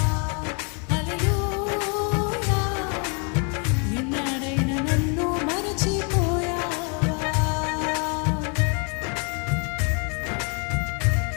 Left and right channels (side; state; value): right; quieter; 36.7 dB